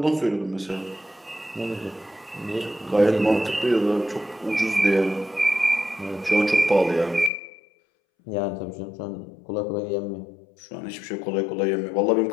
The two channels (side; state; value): right; drops out; at 7.3 s